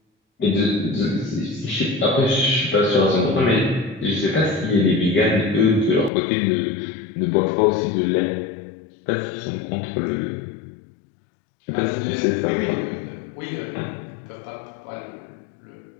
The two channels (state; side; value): drops out; right; at 6.1 s